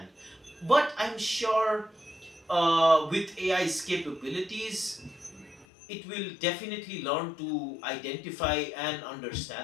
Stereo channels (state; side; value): drops out; right; at 5.7 s